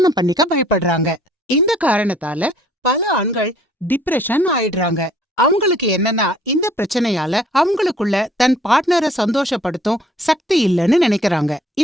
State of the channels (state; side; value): normal; both; correlation 0.58